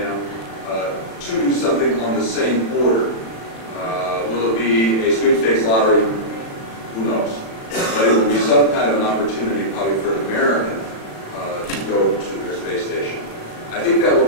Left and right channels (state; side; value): late; right; 36 ms